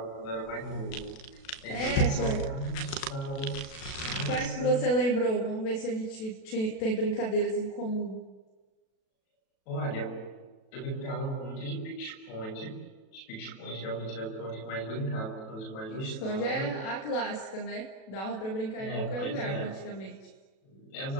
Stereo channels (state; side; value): late; right; 37 ms